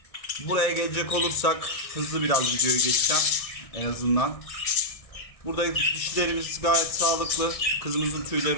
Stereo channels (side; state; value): right; late; 1.6 ms